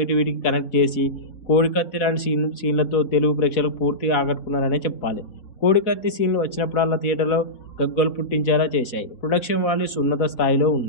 కనెక్ట్ చేసి కోడికత్తి లాంటి సీన్లతో తెలుగు ప్రేక్షకులకు పూర్తిగా ఆకట్టుకున్నారనే చెప్పాలి. కోడికత్తి సీన్లు వచ్చినప్పుడల్లా థియేటర్లో గగ్గోలు పుట్టించేలా చేశాయి. ప్రొడక్షన్ వాల్యూస్ ఉన్నత స్థాయిలో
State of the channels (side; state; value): right; late; 4.0 ms